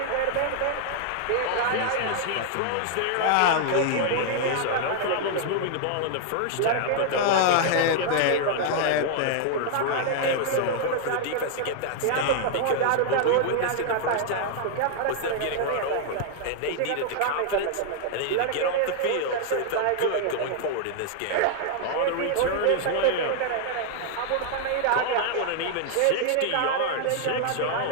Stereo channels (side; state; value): both; different; correlation 0.00